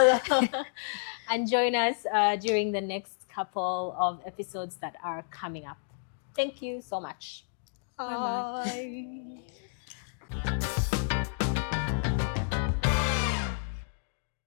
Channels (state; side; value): silent; right; digital silence